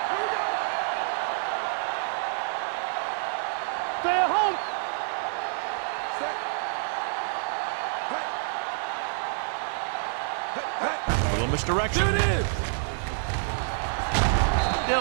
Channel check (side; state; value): left; silent; digital silence